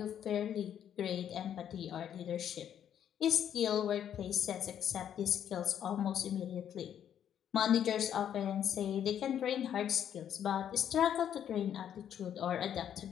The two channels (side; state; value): right; quieter; 9.6 dB